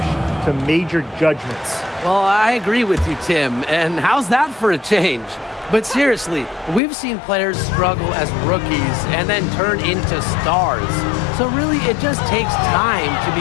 to major judgments. Well, I agree with you, Tim. And how's that for a change? But seriously, we've seen players struggle as rookies and then turn into stars. So really, it just takes time to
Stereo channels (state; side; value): drops out; right; at 6.8 s